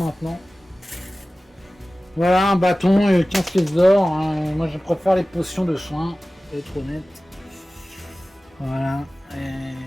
Voilà, un bâton et 15 pièces d'or. Hein. Moi, je préfère les potions de soins, pour être honnête. Voilà.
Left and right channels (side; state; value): both; normal; correlation 0.97